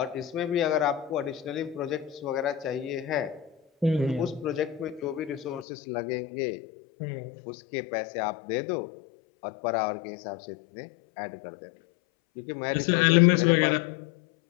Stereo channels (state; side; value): drops out; right; at 5.7 s